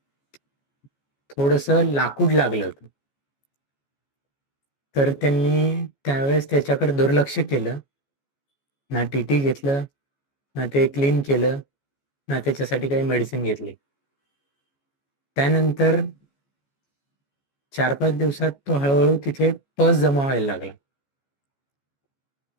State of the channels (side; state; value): right; late; 14 ms